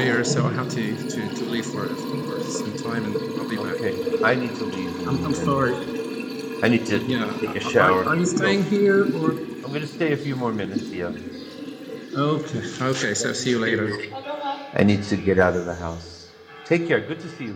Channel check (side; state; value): both; identical; correlation 1.00